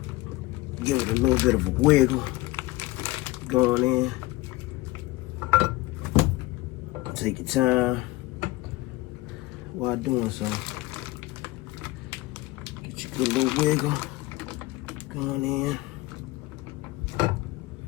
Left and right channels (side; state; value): right; quieter; 19.6 dB